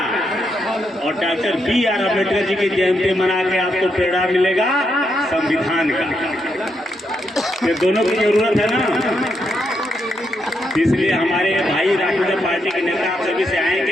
और डॉक्टर B.R. अम्बेडकर जी की जयंती मना के आपको प्रेरणा मिलेगा संविधान का। ये दोनों की जरूरत है ना, इसलिए हमारे भाई राष्ट्रीय पार्टी के नेता आप सभी से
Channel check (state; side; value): normal; both; correlation 0.80